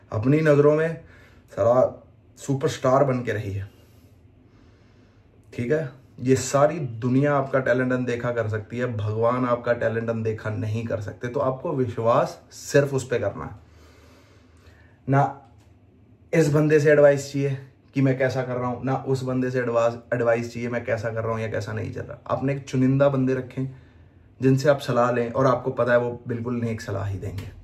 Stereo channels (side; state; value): both; identical; correlation 1.00